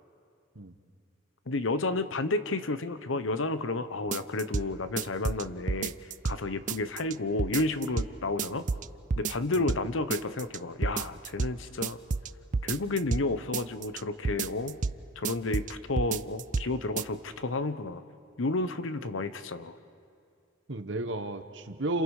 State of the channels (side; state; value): both; normal; correlation 0.25